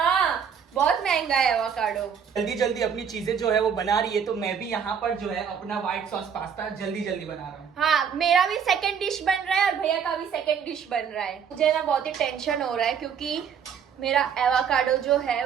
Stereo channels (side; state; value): left; quieter; 7.3 dB